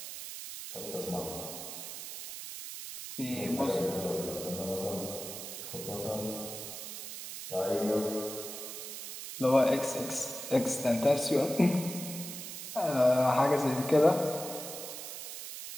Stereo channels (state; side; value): noise; right; hiss, 9 dB below the sound